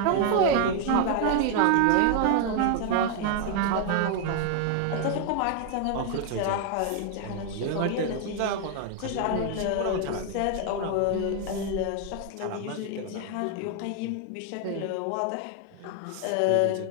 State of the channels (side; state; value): both; different; correlation 0.00